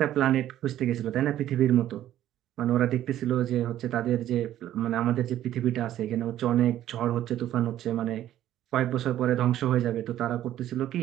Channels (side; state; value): left; quieter; 12.5 dB